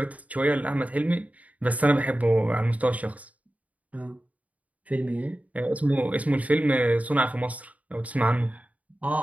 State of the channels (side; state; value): left; late; 0.071 ms